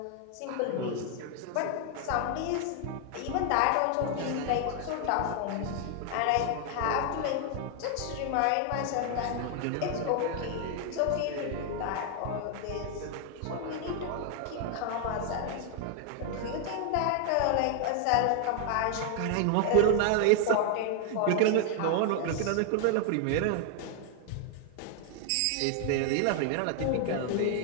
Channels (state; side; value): different; both; correlation 0.00